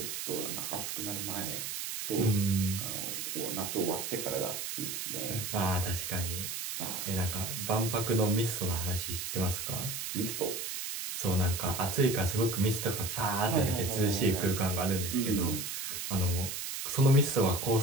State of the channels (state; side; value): noise; right; hiss, 4 dB below the sound